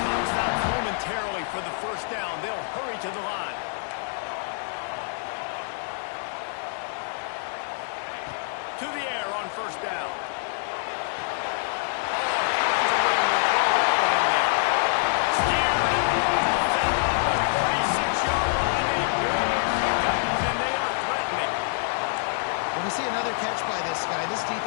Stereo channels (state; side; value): silent; right; digital silence